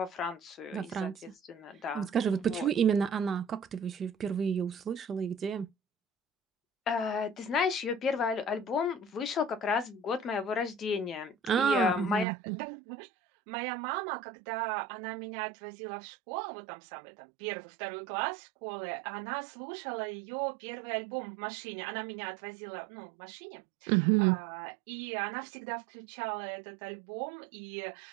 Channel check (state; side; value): drops out; left; at 12.2 s